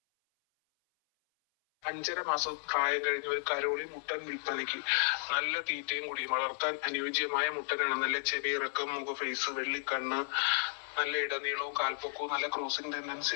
5.5 മാസം പ്രായം കഴിഞ്ഞ ഒരു കരോളി മുട്ടൻ വിൽപ്പനയ്ക്ക്. നല്ല തീറ്റയും കൂടി വളർത്താൻ അനുയോജ്യമായ മുട്ടനാണ്. നല്ല ചെവിയിറക്കം, മുഖഫേസ്, വെള്ളിക്കണ്ണ്, നല്ല ഇടനീളവും കാൽപ്പൊക്കവും നല്ല ക്രോസിംഗ് ടെൻഡൻസി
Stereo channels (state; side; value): silent; right; 55 dB below the other